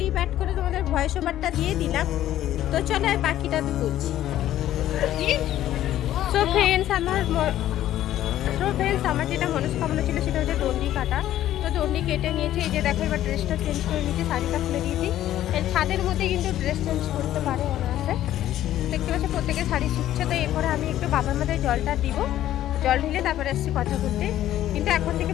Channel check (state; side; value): quieter; right; 12.8 dB